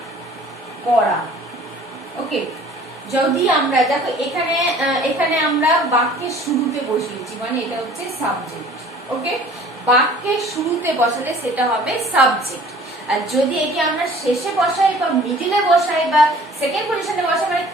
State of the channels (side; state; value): both; normal; correlation 0.50